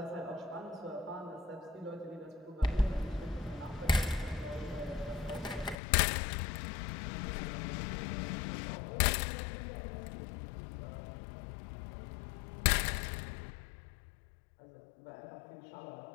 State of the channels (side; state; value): right; drops out; at 5.8 s